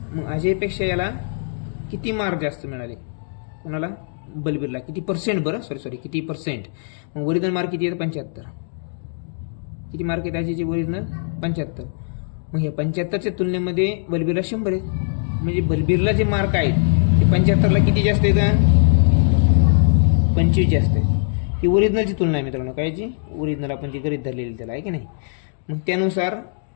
मग अजयपेक्षा याला किती मार्क जास्त मिळाले, कोणाला, बलबीरला. किती पर्सेंट, बरं सॉरी किती पर्सेंट. मग ओरिजिनल मार्क किती आहेत, 75. किती मार्क आहेत अजयचे ओरिजिनल, 75. मग हे 75च्या तुलनेमध्ये बलबीरला 100 आहेत. म्हणजे बलबीरला जे मार्क आहेत ते 75ला किती जास्त आहेत, 25 जास्त आहेत. ही ओरिजिनलची तुलना आहे मित्रांनो, कायची, ओरिजिनल आपण जी गरीब धरलेली त्याला, आहे की नाही. मग त्यानुसार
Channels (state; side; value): silent; right; digital silence